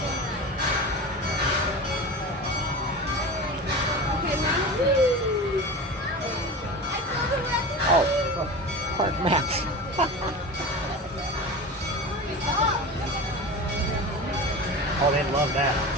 Oh, look, park maps. Oh, they love that.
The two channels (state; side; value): normal; both; correlation 0.30